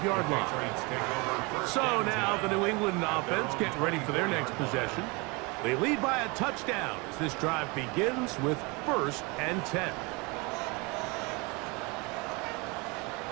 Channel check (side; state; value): left; quieter; 27.7 dB